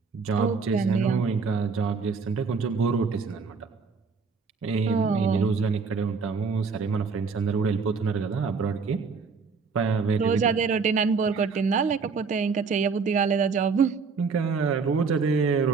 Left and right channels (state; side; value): quieter; left; 5.1 dB